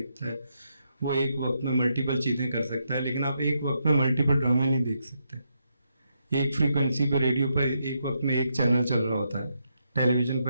है, वो एक वक्त में मल्टीपल चीज़ें कर सकता है, लेकिन आप एक वक्त में मल्टीपल ड्रामे नहीं देख सकते। एक फ्रीक्वेंसी पर रेडियो पर एक वक्त में एक चैनल चल रहा होता है, टेलीविज़न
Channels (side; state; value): both; inverted; correlation -0.81